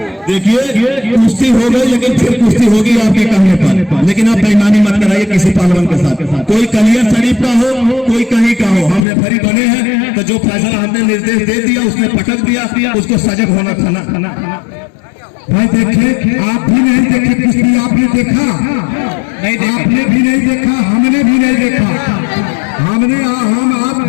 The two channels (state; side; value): drops out; right; at 9.1 s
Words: देखिए कुश्ती हो गई लेकिन फिर कुश्ती होगी आपके कहने पर। लेकिन आप बेईमानी मत कराइए किसी पहलवान के साथ। कोई कलियर शरीफ का हो, कोई कहीं का हो, हम रेफरी बने हैं तो जो फैसला हमने निर्देश दे दिया, उसने पटक दिया, उसको सजग होना था। भाई देखे, आप भी नहीं देखे कुश्ती, आपने देखा नहीं, आपने भी नहीं देखा, हमने भी नहीं देखा। हम आप